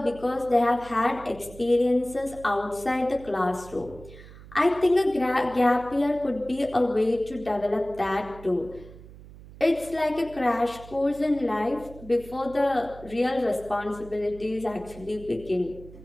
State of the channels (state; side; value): noise; right; hum, 18 dB below the sound